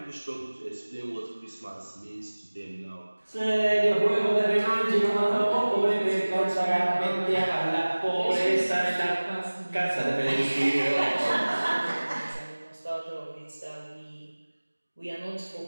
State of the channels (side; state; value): both; inverted; correlation -1.00